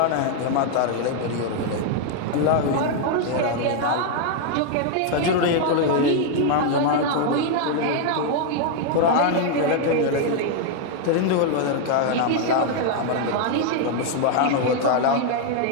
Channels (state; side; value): different; both; correlation 0.00